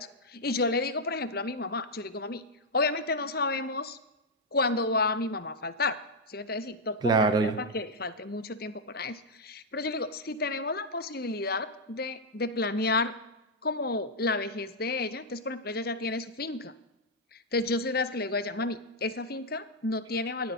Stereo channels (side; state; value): both; normal; correlation -0.02